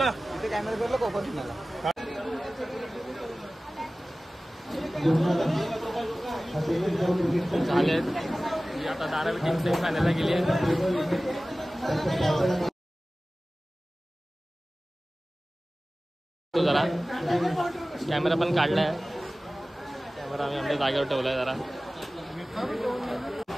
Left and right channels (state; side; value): normal; both; correlation 0.97